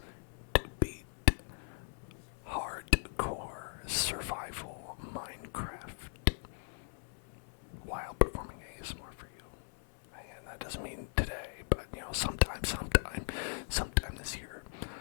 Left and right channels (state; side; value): silent; right; 52 dB below the other